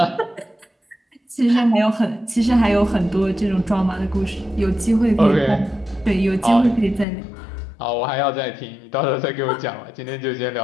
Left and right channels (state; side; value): drops out; right; at 7.1 s